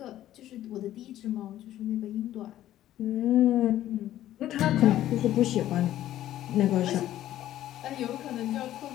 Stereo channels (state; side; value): quieter; right; 13.1 dB